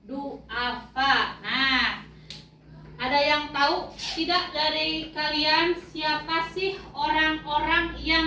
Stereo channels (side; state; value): both; identical; correlation 1.00